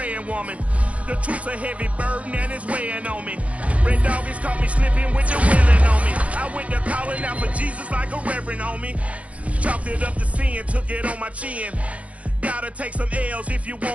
woman. The truth's a heavy burden and it's weighing on me. Red doggies caught me slipping with the willing on me. I went to calling out for Jesus like a reverend on me. Chalked it up to sin, took it on my chin. Gotta take some L's if you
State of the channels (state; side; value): late; left; 0.065 ms